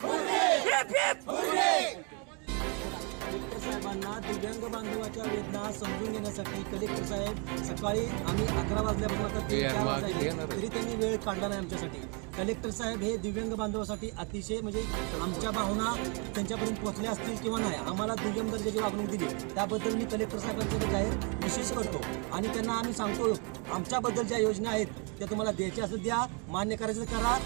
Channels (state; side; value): quieter; left; 34.6 dB